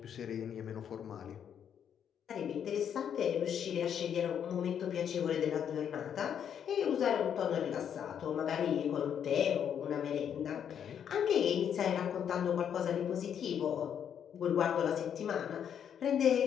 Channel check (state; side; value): quieter; right; 8.6 dB